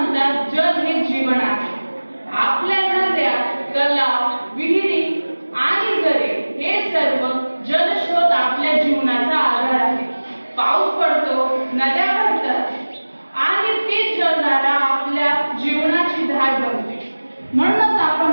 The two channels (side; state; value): both; inverted; correlation -1.00